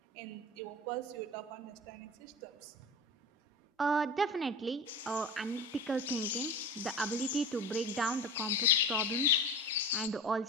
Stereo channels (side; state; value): both; normal; correlation 0.31